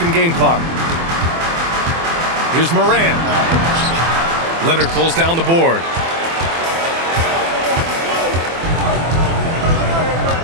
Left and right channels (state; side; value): late; left; 24 ms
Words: and game clock. Here's Morant. Leonard pulls down the board.